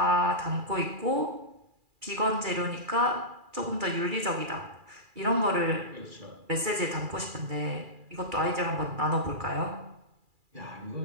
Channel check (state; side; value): late; left; 2.4 ms